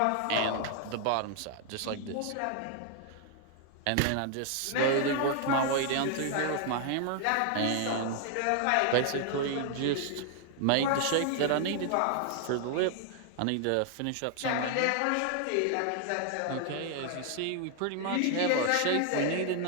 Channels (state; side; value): different; both; correlation 0.00